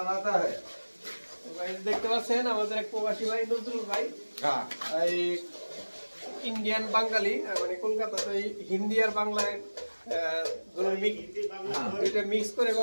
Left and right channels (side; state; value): both; inverted; correlation -1.00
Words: है। देखते পাচ্ছেন আমাদের এক প্রবাসী ভাই নজরুল ভাই। হ্যাঁ এই ইন্ডিয়ান বাঙালি মানে কলকাতাতে হিন্দি আর বাংলায় দুইটা মিক্স করে